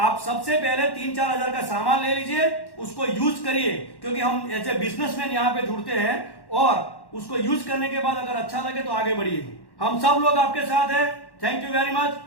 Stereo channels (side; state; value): right; late; 1.1 ms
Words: सबसे पहले 3-4 हजार का सामान ले लीजिए, उसको यूज करिए, क्योंकि हम एज ए बिजनेसमैन यहां पे जुड़ते हैं, और उसको यूज करने के बाद अगर अच्छा लगे तो आगे बढ़िए। हम सब लोग आपके साथ हैं। Thank you very much,